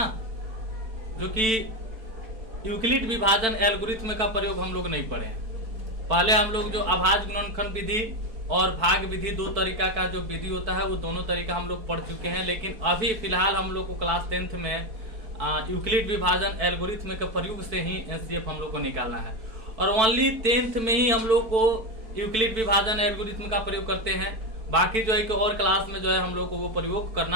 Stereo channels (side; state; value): left; late; 4.5 ms